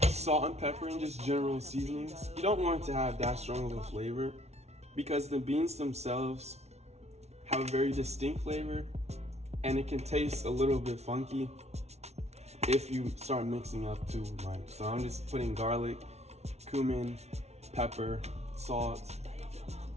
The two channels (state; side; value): late; left; 0.31 ms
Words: salt and pepper and just general seasonings. You don't want it to have that strong of a flavor because the beans themselves have a very distinct flavor and it can taste a little bit funky if you start mixing up too much. So I'm just putting garlic, cumin, pepper, salt,